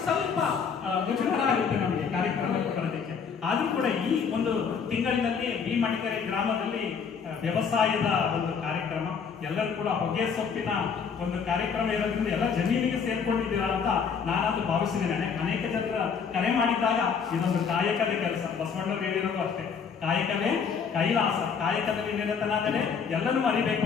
ಸ್ವಲ್ಪ ಮುಜುಗರ ಆಗುತ್ತೆ ನಮಗೆ ಕಾರ್ಯಕ್ರಮಕ್ಕೆ ಬರೋದಕ್ಕೆ. ಆದ್ರೂ ಕೂಡ ಈ ಒಂದು ತಿಂಗಳಿನಲ್ಲಿ ಬಿ ಮಟಕೆರೆ ಗ್ರಾಮದಲ್ಲಿ ವ್ಯವಸಾಯದ ಒಂದು ಕಾರ್ಯಕ್ರಮ, ಎಲ್ಲರೂ ಕೂಡ ಹೊಗೆ ಸೊಪ್ಪಿನ ಒಂದು ಕಾರ್ಯಕ್ರಮ ಇರೋದ್ರಿಂದ ಎಲ್ಲ ಜಮೀನಿಗೆ ಸೇರ್ಕೊಂಡಿದ್ದೀರಾ ಅಂತ ನಾನಂತೂ ಭಾವಿಸಿದ್ದೇನೆ. ಅನೇಕ ಜನರ ಕರೆ ಮಾಡಿದ್ದಾಗ ಇದೊಂದು ಕಾಯಕದ ಕೆಲಸ. ಬಸವಣ್ಣವ್ರು ಹೇಳಿರೋದು ಅಷ್ಟೇ, ಕಾಯಕವೇ ಕೈಲಾಸ, ಕಾಯಕದಲ್ಲಿ ನಿರತನಾದರೆ ಎಲ್ಲನೂ ಅರಿಬೇಕು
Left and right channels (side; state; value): right; quieter; 6.3 dB